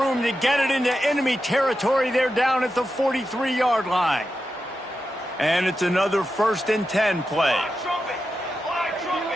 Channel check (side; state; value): both; normal; correlation 0.89